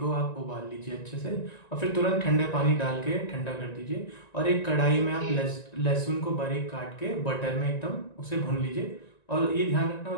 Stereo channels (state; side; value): late; right; 1.9 ms